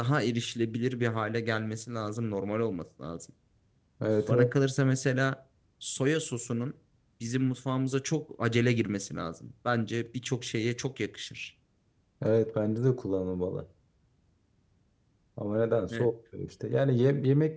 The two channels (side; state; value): both; identical; correlation 1.00